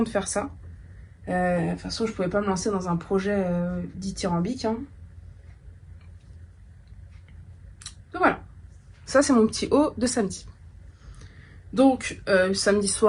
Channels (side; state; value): both; identical; correlation 1.00